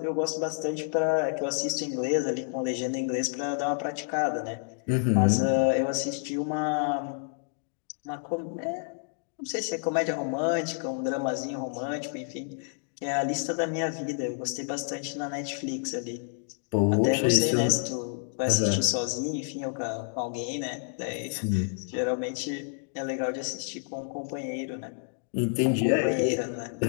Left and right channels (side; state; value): right; silent; 59 dB below the other